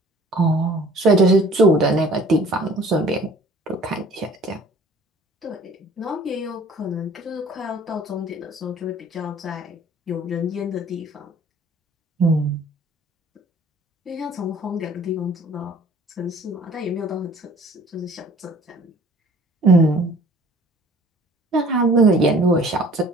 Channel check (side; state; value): both; normal; correlation 0.52